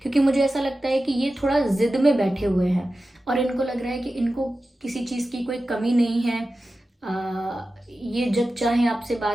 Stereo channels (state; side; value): normal; both; correlation 0.94